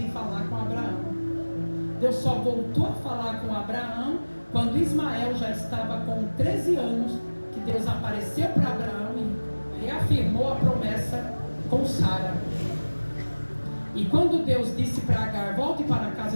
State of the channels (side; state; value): both; inverted; correlation -1.00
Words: falar com Abraão. Deus só voltou a falar com Abraão quando Ismael já estava com 13 anos, que Deus apareceu para Abraão e reafirmou a promessa com Sara. E quando Deus disse para Agar, volte para a